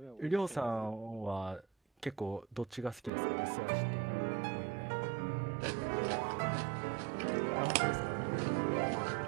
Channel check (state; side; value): drops out; left; at 3.1 s